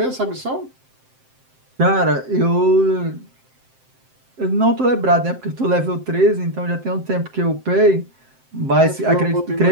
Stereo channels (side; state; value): left; late; 7.7 ms